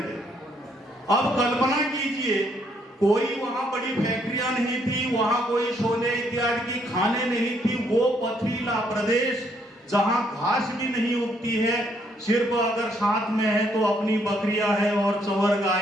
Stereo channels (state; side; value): normal; both; correlation 0.70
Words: अब कल्पना कीजिए, कोई वहां बड़ी फैक्ट्रियां नहीं थी, वहां कोई सोने इत्यादि की खाने नहीं थी। वो पथरीला प्रदेश जहां घास भी नहीं उगती है, सिर्फ अगर साथ में है तो अपनी बकरियां है और चवर